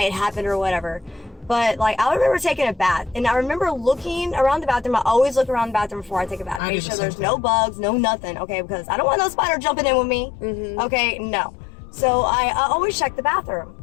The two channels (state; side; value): drops out; right; at 6.6 s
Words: it happened, or whatever. But, I remember taking a bath, and I remember looking around the bathroom. I always look around the bathroom before I take a bath. Make sure there's no bugs, no nothing, okay? Because I don't want no spider jumping in with me. Okay, no. So I always check the